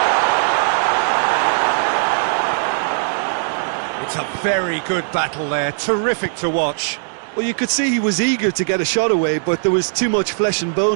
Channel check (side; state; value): left; silent; digital silence